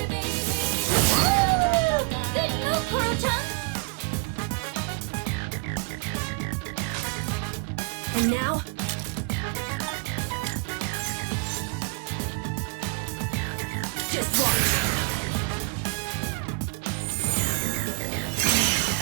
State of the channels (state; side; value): quieter; left; 29.6 dB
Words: Good move, Koro-chan! And now? Just watch.